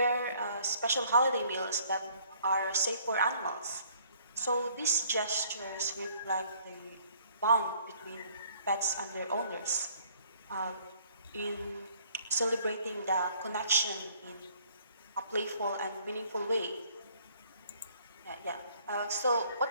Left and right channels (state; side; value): inverted; both; correlation -0.60